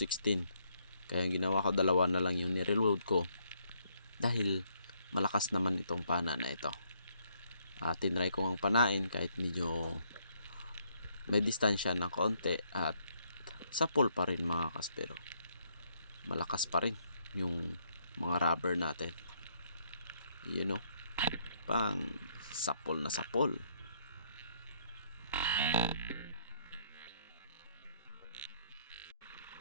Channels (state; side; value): inverted; both; correlation -0.71